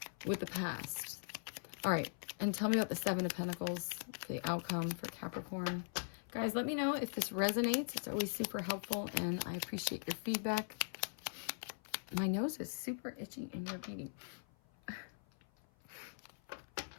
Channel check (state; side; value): silent; right; 50 dB below the other